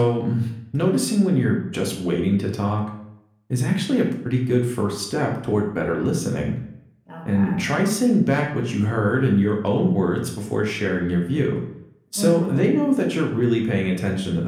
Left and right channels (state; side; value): identical; both; correlation 1.00